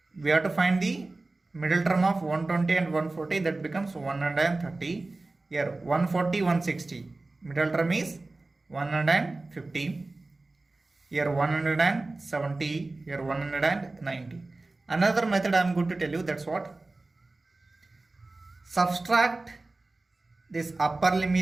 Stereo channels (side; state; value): left; quieter; 3.2 dB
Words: We have to find the middle term of 120 and 140, that becomes 130. Here 140, 160. Middle term is 150. Here 170. Here 190. Another method I am going to tell you, that's what? Subtract this upper